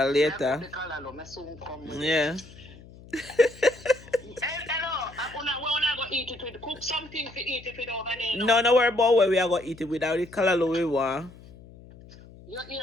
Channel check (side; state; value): left; noise; hum, 20 dB below the sound